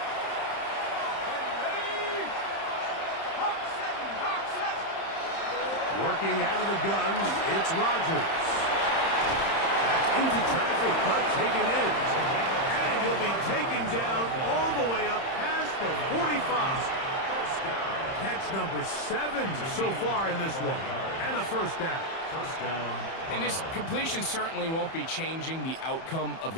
Ready? Hawk 70, Hawk 70. Working out of the gun, it's Rodgers. That's into traffic, but taken in. And he'll be taken down all the way up past the 45. Catch number 7 so far in this one. And a first down. First down. And this completion certainly won't be changing the outcome of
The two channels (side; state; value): right; late; 30 ms